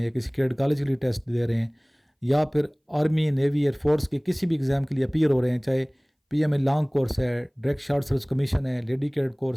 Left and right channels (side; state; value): both; identical; correlation 1.00